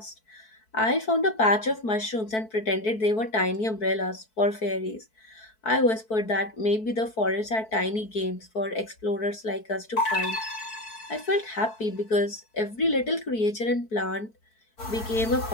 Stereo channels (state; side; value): late; right; 4.6 ms